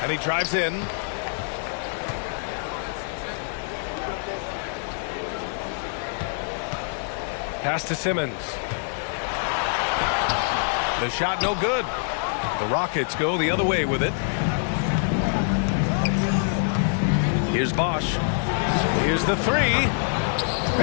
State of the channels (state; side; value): silent; right; digital silence